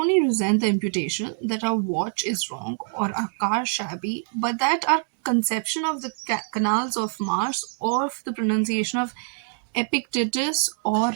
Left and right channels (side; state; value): left; silent; 59 dB below the other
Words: resent the imputation that our watch is wrong or our car shabby, but that our conception of the canals of Mars or of the pronunciation of Epictetus or